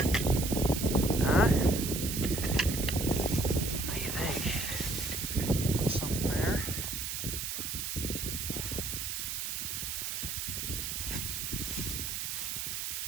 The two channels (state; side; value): noise; right; hiss, 3 dB below the sound